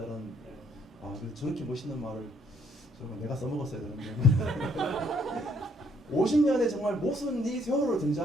그래서 저렇게 멋있는 말을 정말 내가 써먹었어야 되는데 50년의 정말 모순이 세월호로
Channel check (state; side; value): normal; both; correlation 0.68